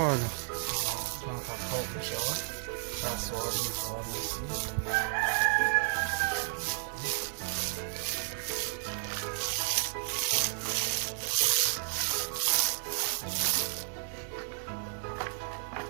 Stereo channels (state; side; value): silent; left; 56 dB below the other